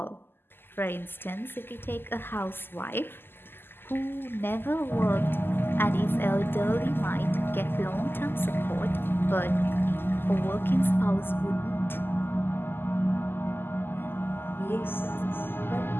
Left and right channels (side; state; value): right; late; 0.10 ms